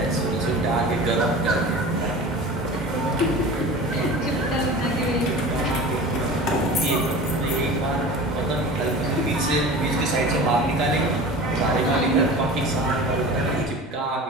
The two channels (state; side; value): normal; both; correlation 0.36